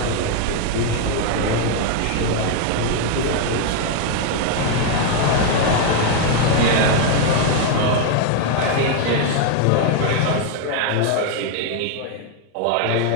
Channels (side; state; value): both; different; correlation 0.00